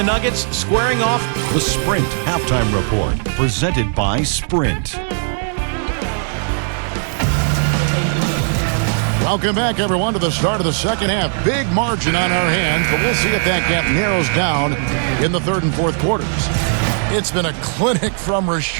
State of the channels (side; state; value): left; silent; digital silence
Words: Nuggets, squaring off The Sprint Halftime Report, presented by Sprint. Welcome back, everyone, to the start of the second half. Big margin on our hands, but we'll see if that gap narrows down in the third and fourth quarters. It's been a clinic from